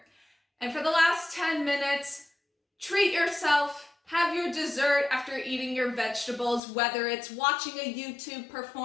And for the last 10 minutes, treat yourself, have your dessert after eating your vegetables, whether it's watching a YouTube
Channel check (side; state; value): right; drops out; at 6.6 s